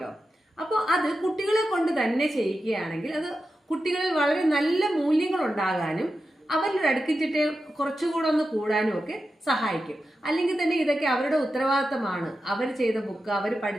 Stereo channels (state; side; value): normal; both; correlation 0.91